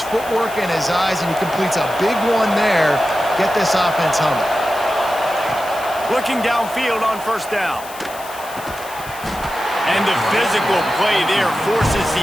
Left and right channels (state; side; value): noise; left; hiss, 16 dB below the sound